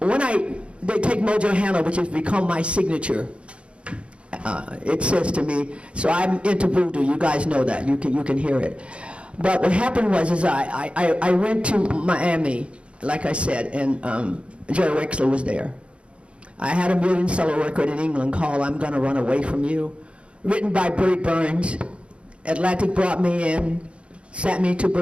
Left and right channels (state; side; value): late; left; 0.059 ms